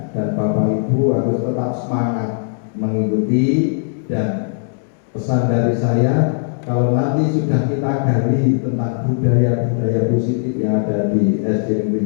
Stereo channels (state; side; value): silent; right; 67 dB below the other